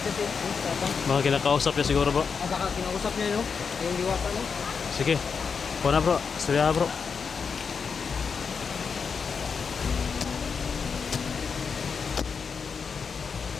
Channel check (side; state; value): right; quieter; 5.8 dB